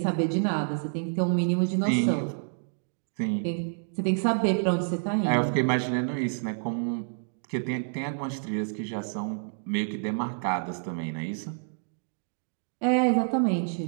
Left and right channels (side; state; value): left; silent; digital silence